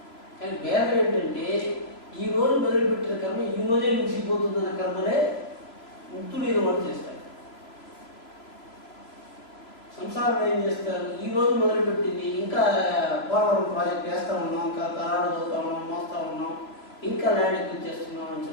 కానీ భేదం ఏంటంటే ఈ రోజు మొదలుపెట్టిన కర్మ ఈ రోజే ముగిసిపోతుందన్న కర్మలే ముక్తులు వాళ్ళు చేస్తారు. సంసారం ఏం చేస్తారు? ఈ రోజు మొదలుపెట్టింది ఇంకా పోలవరం ప్రాజెక్ట్ వేస్తూ ఉన్నాం, ఇంకా తరాలు చదువుతా ఉన్నాం, మోస్తా ఉన్నాం, ఇంకా ల్యాండ్ ఎక్కువ చేస్తున్నాం అని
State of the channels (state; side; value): late; right; 3.0 ms